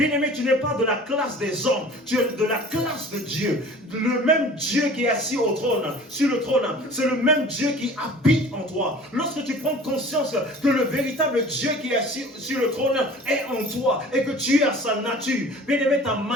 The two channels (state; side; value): normal; both; correlation 0.44